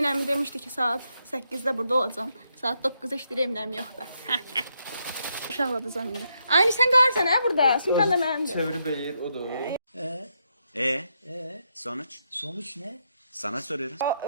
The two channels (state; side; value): inverted; both; correlation -0.80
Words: əmi demişdi ki, saat 8-də burada olacam. Saat 9-da işləyir, Emin əmi yoxdur. Uşaqladacam indi. Aynı sən qarsan hə burada? Sumkan da mənimdir. Çevirip eğir, o da o. Sonuç? Sonuç ne? Sana soruyorum.